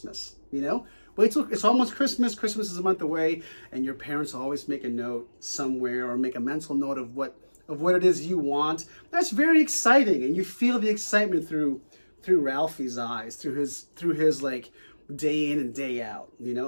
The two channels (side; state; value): both; inverted; correlation -1.00